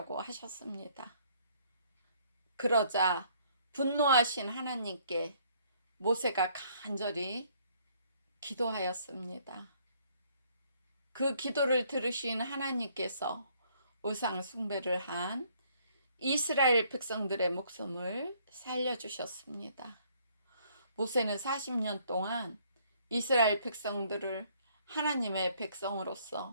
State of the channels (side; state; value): both; inverted; correlation -0.64